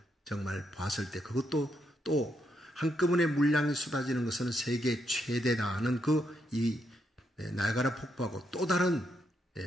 정말 봤을 때 그것도 또 한꺼번에 물량이 쏟아지는 것은 세계 최대다는 이 나야가라 폭포하고 또 다른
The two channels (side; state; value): both; normal; correlation 0.79